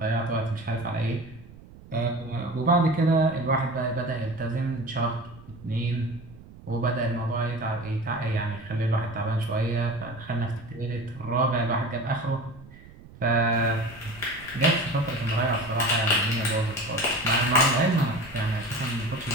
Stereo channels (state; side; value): noise; right; rumble, 20 dB below the sound